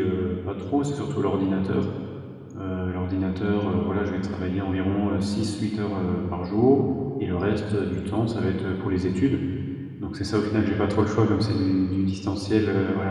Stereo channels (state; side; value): identical; both; correlation 1.00